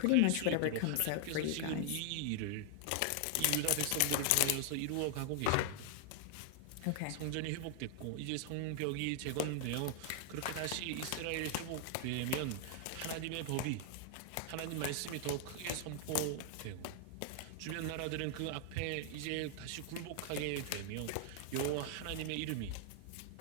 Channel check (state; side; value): different; both; correlation 0.00